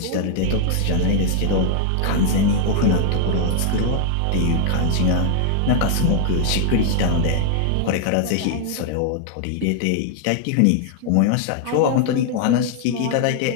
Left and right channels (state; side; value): different; both; correlation 0.00